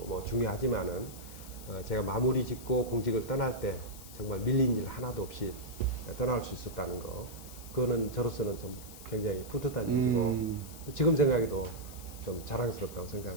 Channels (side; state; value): left; noise; hiss, 16 dB below the sound